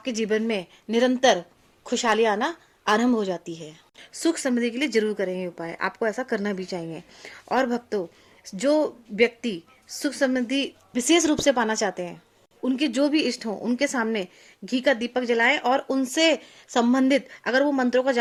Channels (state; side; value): identical; both; correlation 1.00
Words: जीवन में निरंतर खुशहाली आना आरंभ हो जाती है। सुख समृद्धि के लिए जरूर करें ये उपाय, आपको ऐसा करना भी चाहिए। और भक्तों, जो व्यक्ति सुख समृद्धि विशेष रूप से पाना चाहते हैं, उनके जो भी इष्ट हों उनके सामने घी का दीपक जलाएं और उनसे संबंधित अगर वो मंत्रों का